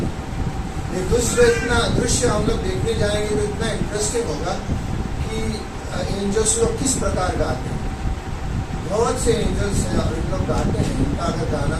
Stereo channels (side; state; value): both; identical; correlation 1.00